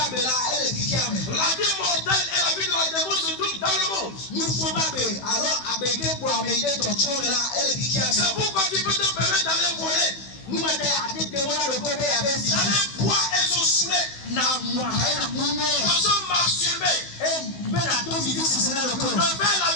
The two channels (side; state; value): right; late; 16 ms